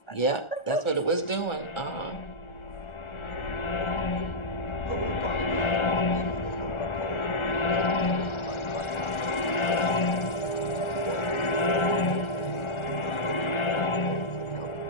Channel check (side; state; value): right; late; 1.4 ms